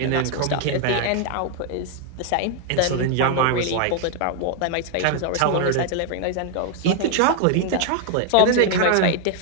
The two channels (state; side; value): different; both; correlation 0.00